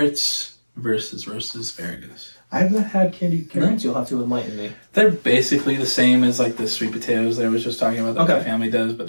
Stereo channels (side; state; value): both; inverted; correlation -1.00